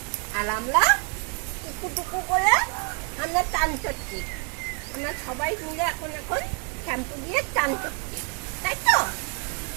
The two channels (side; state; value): left; quieter; 35.5 dB